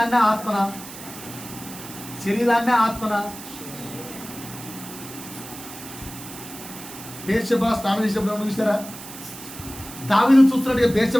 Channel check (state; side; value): noise; right; hiss, 14 dB below the sound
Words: ఆత్మనా? బేర్షెబా స్నానం చేసినప్పుడు ఏమన్నా చూసారా? దావీదు చూస్తున్నట్టుగా